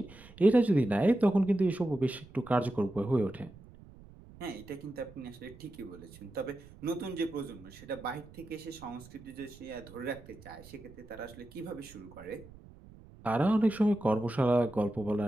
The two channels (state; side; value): noise; right; rumble, 20 dB below the sound